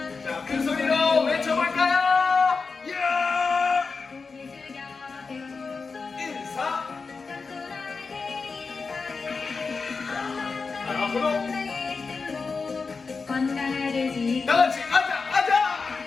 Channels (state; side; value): quieter; right; 4.6 dB